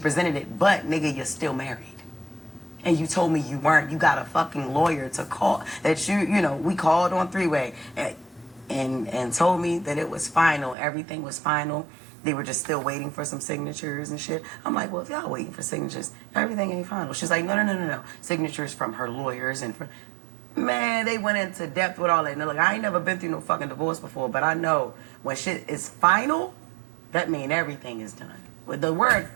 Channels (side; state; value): left; drops out; at 10.8 s